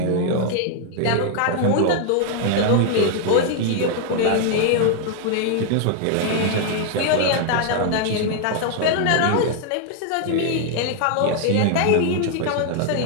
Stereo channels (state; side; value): different; both; correlation 0.00